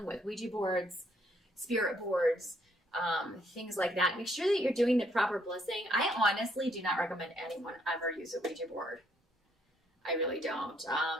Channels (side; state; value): both; normal; correlation 0.70